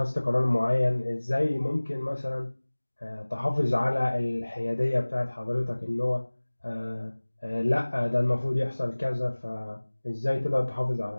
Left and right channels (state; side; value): inverted; both; correlation -1.00